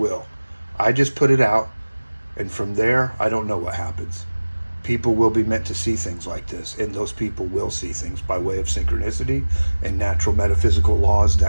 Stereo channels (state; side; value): inverted; both; correlation -1.00